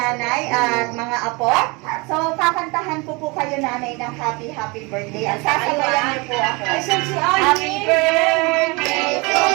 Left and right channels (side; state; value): left; quieter; 27.3 dB